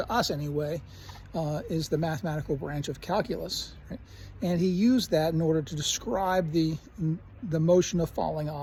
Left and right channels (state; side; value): identical; both; correlation 1.00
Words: us anyway, is the mathematical branch of calculus, right? And he used that in order to describe the motion of falling